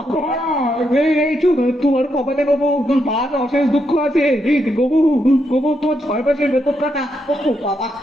এই তোমার কপালে গোবু আজ অশেষ দুঃখ আছে। গোবু গোবু, তোমার 6 মাসের বেতন কাটা। ও বাবা,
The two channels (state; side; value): normal; both; correlation 0.81